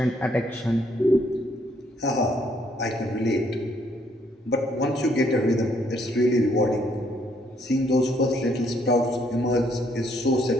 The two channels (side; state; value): both; normal; correlation 0.68